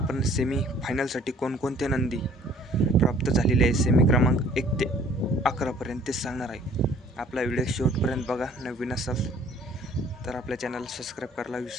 सेमी फायनलसाठी कोणकोणते नंदी प्राप्त झालेले आहे सेमी क्रमांक 1 ते 11 पर्यंत ते सांगणार आहे. आपला व्हिडिओ शेवटपर्यंत बघा. नवीन असाल तर आपल्या चॅनलला सबस्क्राईब करायला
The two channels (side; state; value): both; normal; correlation 0.55